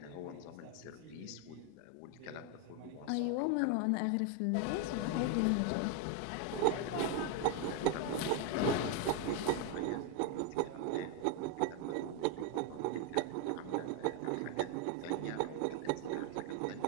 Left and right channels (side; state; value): both; different; correlation 0.01